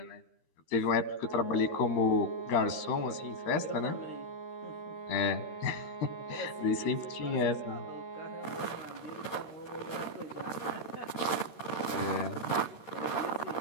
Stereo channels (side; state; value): right; late; 13 ms